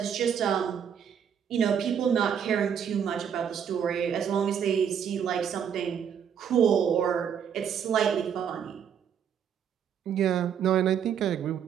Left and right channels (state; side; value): quieter; left; 8.1 dB